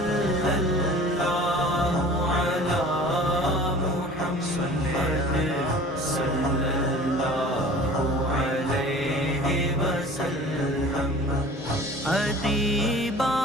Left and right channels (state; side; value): normal; both; correlation 0.44